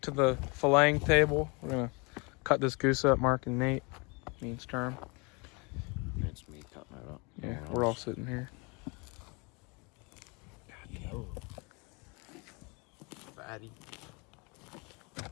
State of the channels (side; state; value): right; quieter; 29.9 dB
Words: to the filleting table. We're gonna cut this goose up, Mark and Nate, me and Sturm. It's me cutting it up. Yeah, we're all sitting here. Fatty.